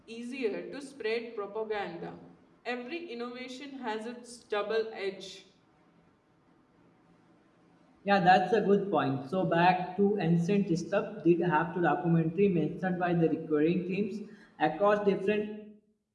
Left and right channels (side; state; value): both; identical; correlation 1.00